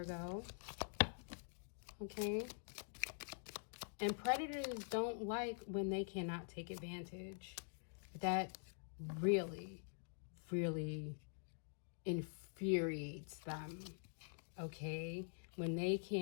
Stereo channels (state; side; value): silent; right; digital silence